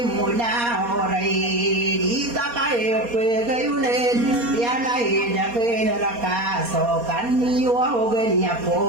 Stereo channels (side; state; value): left; late; 4.2 ms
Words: mo na oray Dita kayo pagayunin Yanay na kinarakaso Kaniyo ako ganyan po